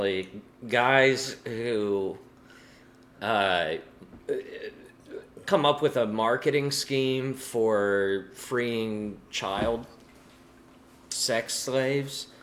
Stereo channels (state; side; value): identical; both; correlation 1.00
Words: guys who come up with a marketing scheme for freeing child sex slaves